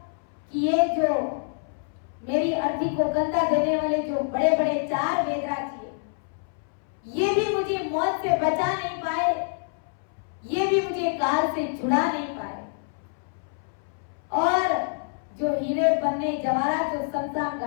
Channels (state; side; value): silent; right; 61 dB below the other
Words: कि ये जो मेरी अर्थी को कंधा देने वाले जो बड़े बड़े 4 वेदराज थे, ये भी मुझे मौत से बचा नहीं पाए, ये भी मुझे काल से छुड़ा नहीं पाए, और जो हीरे पन्ने जवाहरात जो शमशान